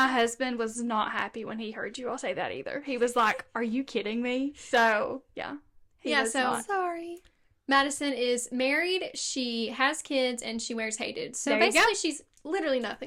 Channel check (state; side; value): identical; both; correlation 1.00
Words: husband was not happy when he heard you all say that either. He was like, "Are you kidding me?" So, yeah. Sorry. Madison is married, she has kids, and she wears Hey Dudes. So There you basically go. she's literally